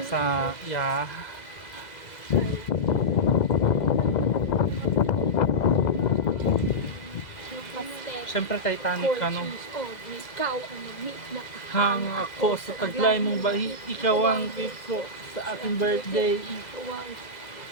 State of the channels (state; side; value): late; right; 2.0 ms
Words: sa Siyempre Titanic ano. Ikaw ang mag-meet na Hang ako sa taglay mong bahi, ikaw ang gift ko sa aking birthday.